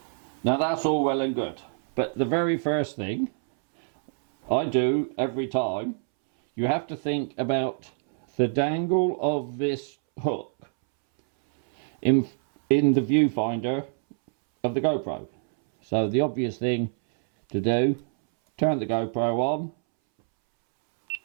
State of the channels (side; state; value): left; silent; 61 dB below the other